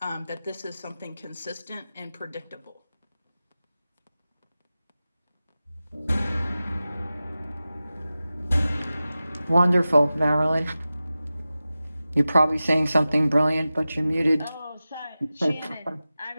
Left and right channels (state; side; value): inverted; both; correlation -0.95